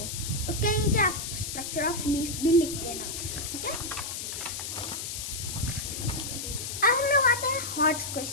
उसके नीचे आप स्ट्रक्चर ऑफ लीफ भी लिख देना, ठीक है। अब हम लोग आते हैं हॉट्स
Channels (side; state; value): left; noise; hiss, 5 dB below the sound